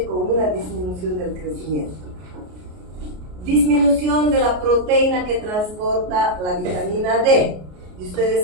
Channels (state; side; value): late; left; 33 ms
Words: con una disminución del crecimiento. Disminución de la proteína que transporta la vitamina D. Y